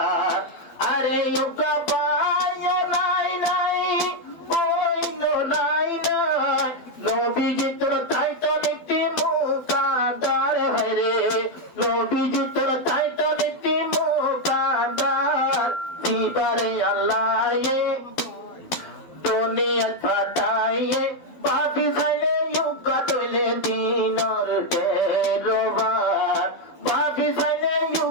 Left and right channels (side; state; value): right; late; 12 ms